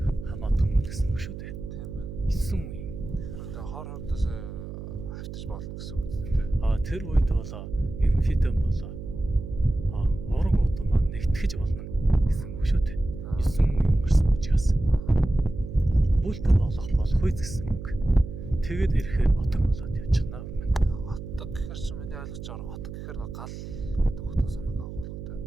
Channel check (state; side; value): noise; right; hum, 10 dB below the sound